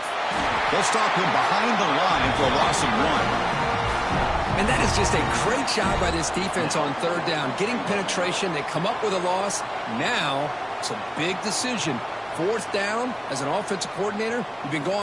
They'll stop him behind the line for a loss of 1. And that is just a great job by this defense on 3rd down. Getting penetration, they come up with a loss. Now it's a big decision. 4th down, as an offensive coordinator, you've been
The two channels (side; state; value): both; identical; correlation 1.00